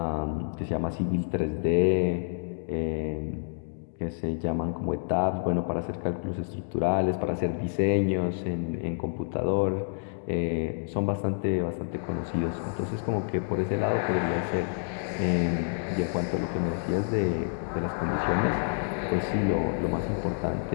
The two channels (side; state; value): right; silent; digital silence